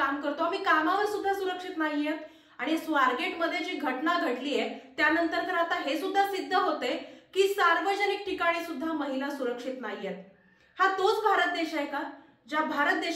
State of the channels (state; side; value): identical; both; correlation 1.00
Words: करतो, आम्ही कामावर सुद्धा सुरक्षित नाहीयेत। आणि स्वारगेटमध्ये जी घटना घडलीय त्यानंतर तर आता हे सुद्धा सिद्ध होते की सार्वजनिक ठिकाणी सुद्धा महिला सुरक्षित नाहीयेत। हा तोच भारत देश आहे का ज्या भारत